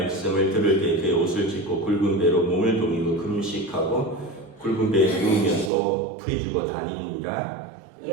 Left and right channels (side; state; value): left; drops out; at 5.7 s